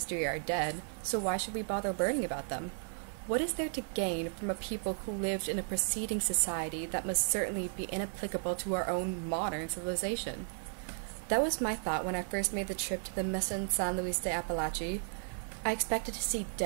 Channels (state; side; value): silent; left; 55 dB below the other